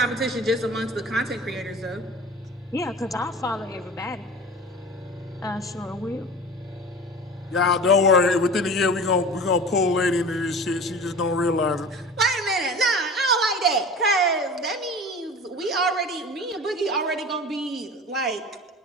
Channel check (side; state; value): both; normal; correlation 0.37